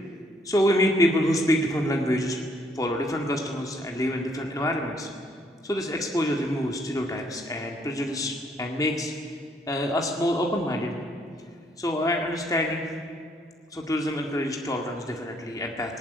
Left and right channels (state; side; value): normal; both; correlation 0.68